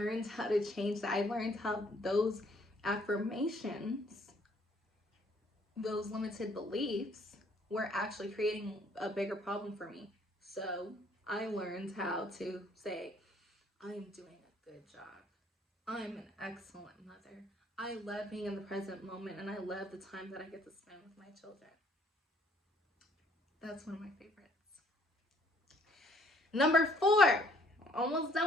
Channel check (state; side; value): normal; both; correlation 0.62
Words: how to change that. I learned how those affirmations, those limited beliefs, were actually creating a bigger problem for me. So I learned how to say, I am doing a good job. I'm an excellent mother. I love being in the present moment, and I love the time that I get to spend with my children. That's one of my favorites. Number 4. Almost